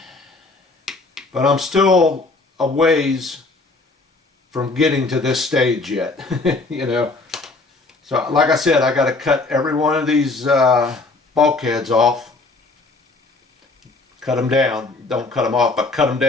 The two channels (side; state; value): right; quieter; 3.5 dB